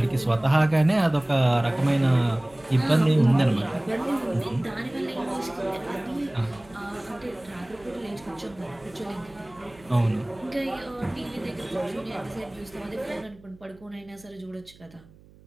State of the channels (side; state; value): right; noise; hum, 25 dB below the sound